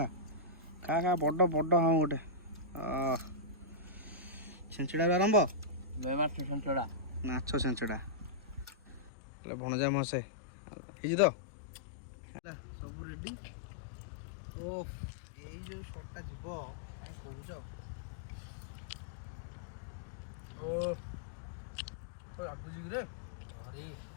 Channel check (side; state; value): right; drops out; at 9.1 s